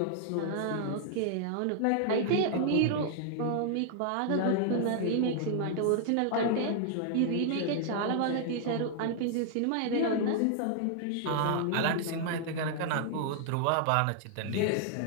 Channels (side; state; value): both; different; correlation -0.01